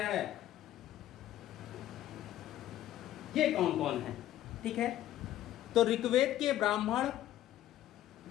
ये कौन कौन है? ठीक है, तो ऋग्वेद के ब्राह्मण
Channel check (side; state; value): right; quieter; 13.1 dB